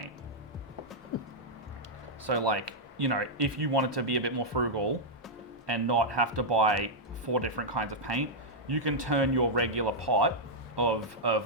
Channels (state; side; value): normal; both; correlation -0.06